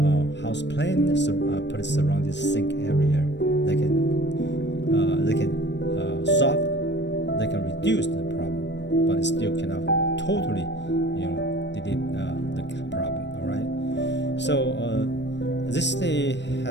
house plan, put it surround this sink area. They can solve, they can reduce the problem, but it still cannot totally delete the problem. All right. So this day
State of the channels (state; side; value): late; right; 0.51 ms